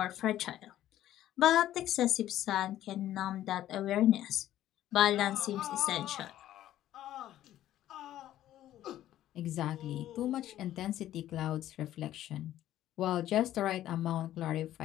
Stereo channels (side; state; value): right; quieter; 12.9 dB